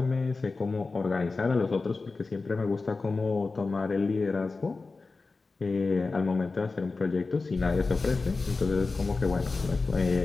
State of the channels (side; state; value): right; quieter; 3.9 dB